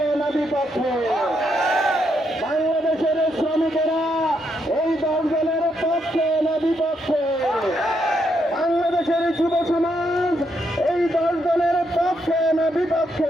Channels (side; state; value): both; normal; correlation 0.78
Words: না বিপক্ষে? বাংলাদেশের শ্রমিকেরা এই দলের পক্ষে না বিপক্ষে? বাংলাদেশের যুব সমাজ এই দলের পক্ষে না